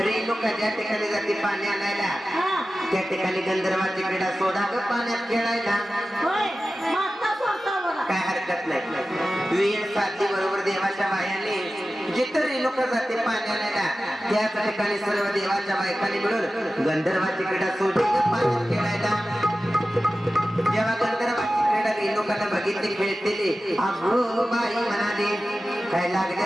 ज्या ठिकाणी जाते पाणी आणायला हा त्या ठिकाणी गंधर्वाची क्रीडा सोडा ग पाण्यात खेळायला होय माता सोडता बघा काय हरकत नाही वेळ साधली बरोबर देवाच्या बायाने जिथं रेणुका जाते पाणी आणायला त्याच ठिकाणी सर्व देवाच्या बायकांनी मिळून गंधर्वाची क्रीडा सोडली ग पाण्यात खेळायला जेव्हा गंधर्वाची क्रीडा रेणुकाला बघितली खेळतेली अगो बाई म्हणाली काय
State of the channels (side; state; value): both; normal; correlation 0.94